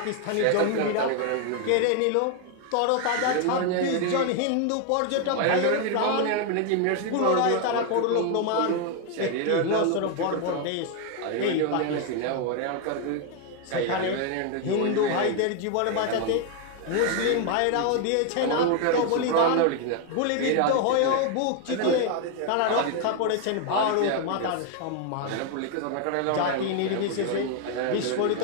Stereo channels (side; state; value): both; different; correlation 0.01